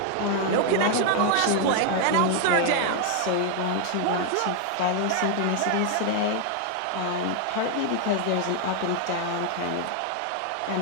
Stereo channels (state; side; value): different; both; correlation 0.00